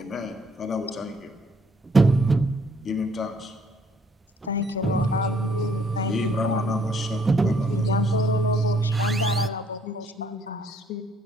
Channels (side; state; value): both; normal; correlation 0.64